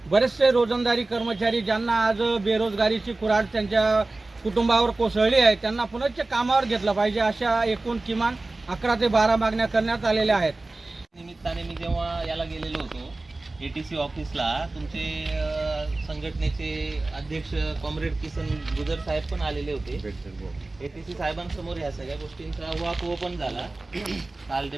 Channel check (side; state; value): left; quieter; 3.1 dB